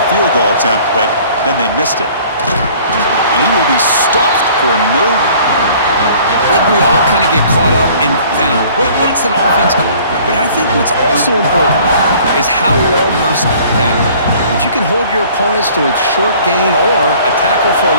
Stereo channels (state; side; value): inverted; both; correlation -0.52